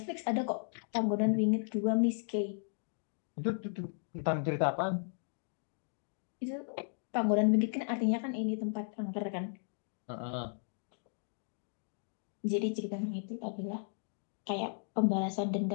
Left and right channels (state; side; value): silent; right; digital silence